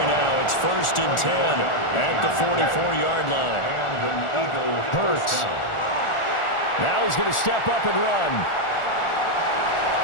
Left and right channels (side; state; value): right; late; 1.4 ms